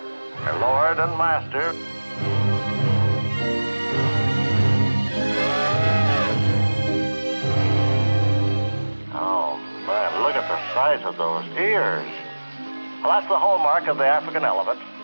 lord and master. Oh, man, look at the size of those ears. Well, that's the hallmark of the African elephant.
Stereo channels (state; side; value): inverted; both; correlation -1.00